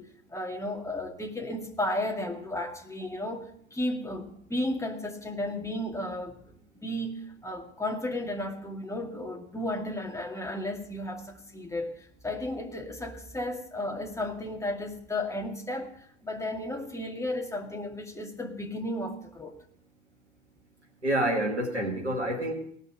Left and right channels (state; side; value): normal; both; correlation 0.51